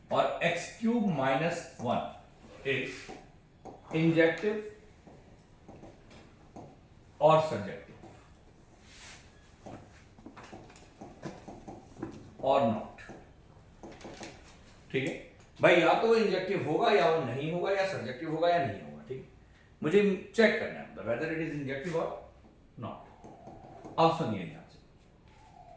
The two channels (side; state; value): both; identical; correlation 1.00